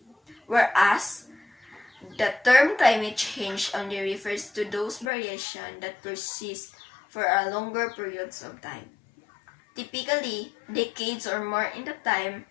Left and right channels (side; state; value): right; drops out; at 5.1 s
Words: whereas the term climate change only refers to those variations that persist for a longer periods of time, typically decades or more in the time